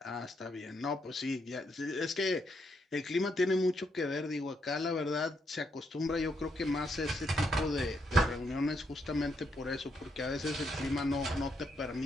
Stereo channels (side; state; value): both; normal; correlation 0.77